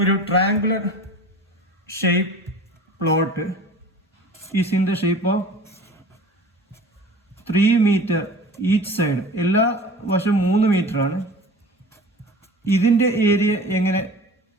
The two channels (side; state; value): both; normal; correlation 0.41